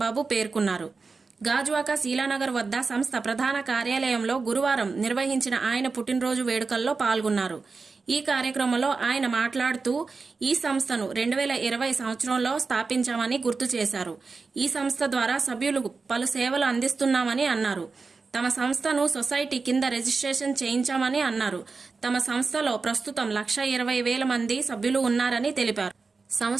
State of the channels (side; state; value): left; quieter; 4.4 dB